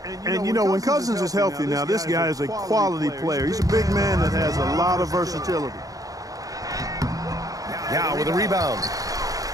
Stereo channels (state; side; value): late; left; 0.17 ms